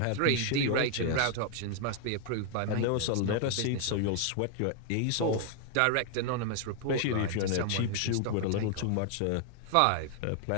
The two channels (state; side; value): different; both; correlation 0.00